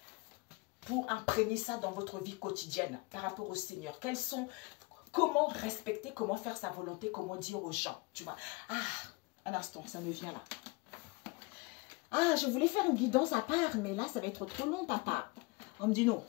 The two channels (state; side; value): quieter; right; 25.5 dB